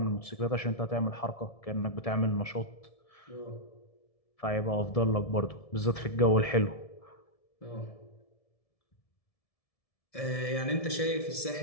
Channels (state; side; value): late; right; 1.7 ms